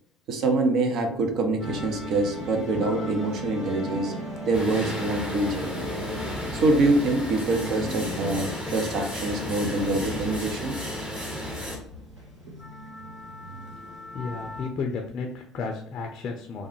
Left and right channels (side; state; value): both; normal; correlation 0.52